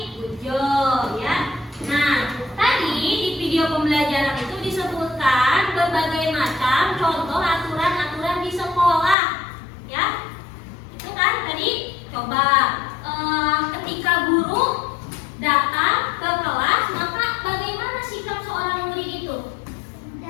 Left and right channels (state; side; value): drops out; right; at 9.2 s